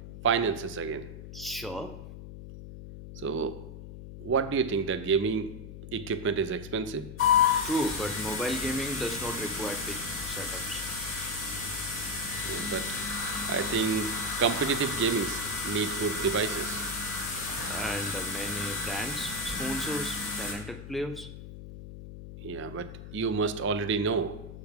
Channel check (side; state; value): left; noise; hum, 12 dB below the sound